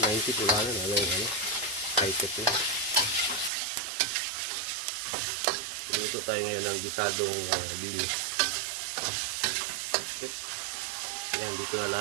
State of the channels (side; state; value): left; drops out; at 3.5 s